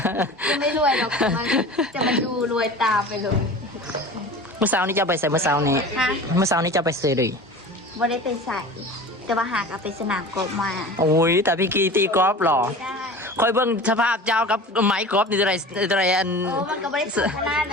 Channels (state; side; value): normal; both; correlation 0.37